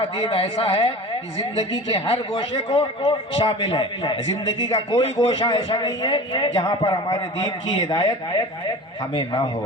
دین ایسا ہے کہ زندگی کے ہر گوشے کو شامل ہے، زندگی کا کوئی گوشہ ایسا نہیں ہے جہاں پر ہمارے دین کی ہدایت ہمیں نہ ہو۔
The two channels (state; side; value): normal; both; correlation 0.36